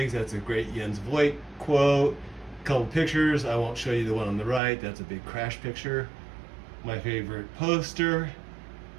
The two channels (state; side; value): drops out; left; at 4.6 s